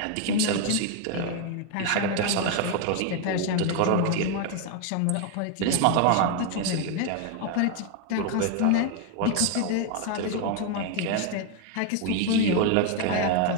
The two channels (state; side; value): different; both; correlation 0.01